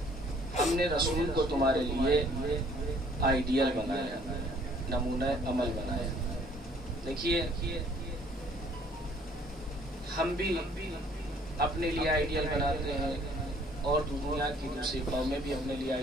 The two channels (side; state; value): both; normal; correlation 0.59